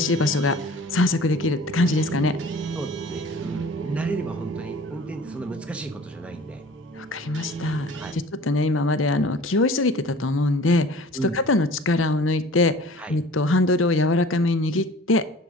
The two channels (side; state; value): both; normal; correlation 0.45